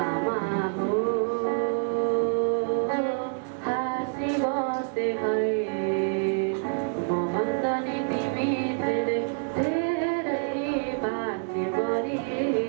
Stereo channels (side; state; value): left; silent; 60 dB below the other